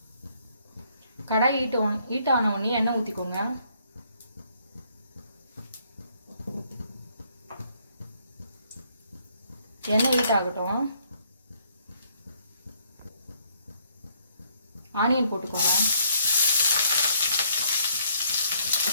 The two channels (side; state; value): both; inverted; correlation -0.67